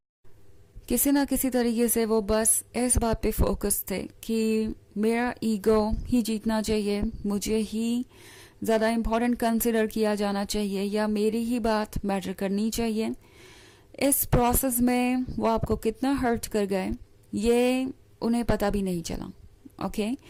किसी ना किसी तरीके से वो बस इस बात पे फोकस थे कि मेरा ईगो ही जीतना चाहिए, मुझे ही ज़्यादा इम्पोर्टेंट कंसिडर किया जाना चाहिए, या मेरी ही बात मैटर करनी चाहिए. इस प्रोसेस में वो आपको कितना हर्ट कर गए ये उन्हें पता भी नहीं चला. ओके,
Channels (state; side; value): identical; both; correlation 1.00